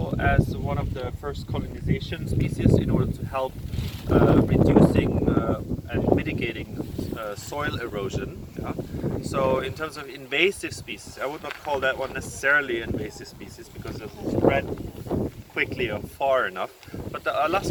as one of the first colonization species in order to help reducing and mitigating soil erosion. Yeah? So in terms of invasive species, I would not call that one necessarily invasive species because it doesn't spread quickly or far enough. But the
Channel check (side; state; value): both; identical; correlation 1.00